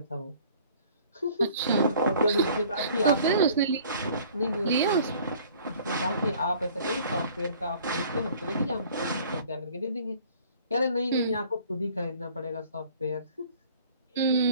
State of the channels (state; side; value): inverted; both; correlation -0.52